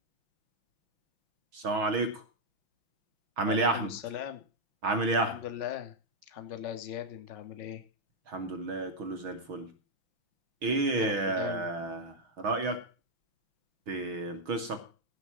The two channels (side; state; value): left; late; 6.3 ms